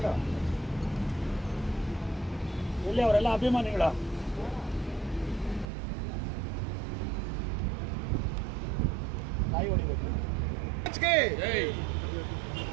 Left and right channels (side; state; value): left; drops out; at 5.7 s